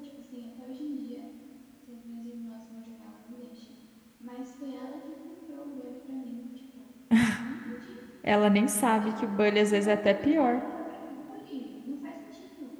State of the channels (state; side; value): identical; both; correlation 1.00